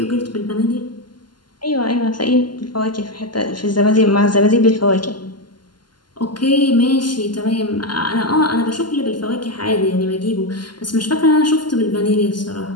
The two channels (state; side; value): late; right; 0.71 ms